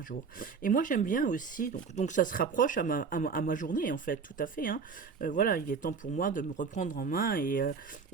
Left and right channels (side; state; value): left; quieter; 5.4 dB